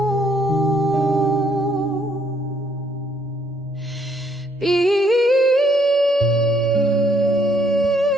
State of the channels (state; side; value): normal; both; correlation 0.69